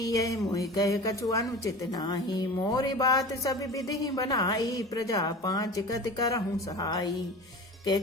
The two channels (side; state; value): both; normal; correlation 0.35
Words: यह मोहि कह कछु अनुचित नाही, मोरी बात सब विधि बनाई, प्रजा पांच कति करहूं सहाई।